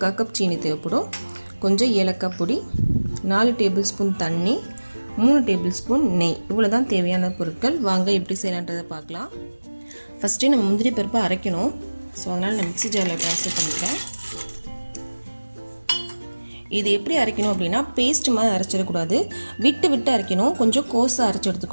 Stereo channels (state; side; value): inverted; both; correlation -1.00